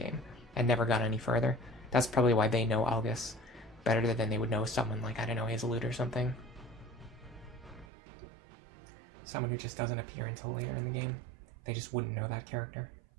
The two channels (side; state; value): left; drops out; at 7.9 s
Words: and never got any further. That's probably why they know Algus better than they would know someone like, I don't know, Hazelute or something. Someone who just doesn't appear until later in the game. They just wouldn't know that character.